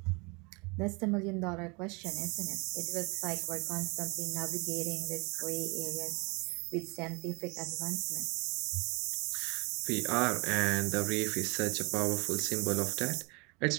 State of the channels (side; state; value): left; quieter; 29.0 dB